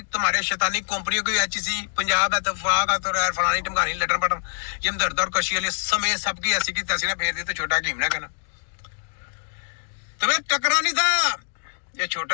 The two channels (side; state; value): right; silent; digital silence